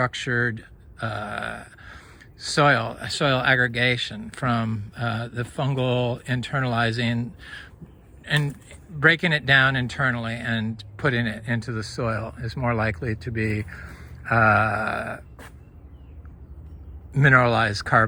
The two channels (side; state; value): both; identical; correlation 1.00